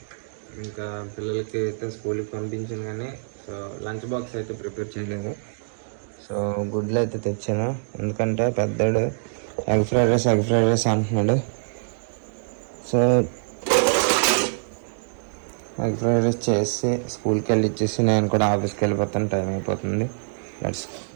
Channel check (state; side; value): silent; left; digital silence